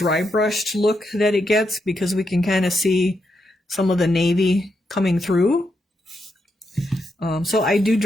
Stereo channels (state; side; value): normal; both; correlation 0.82